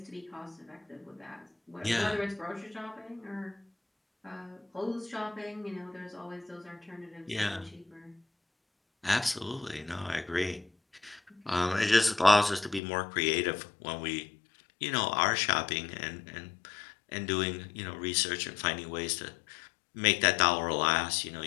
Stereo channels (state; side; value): drops out; right; at 12.8 s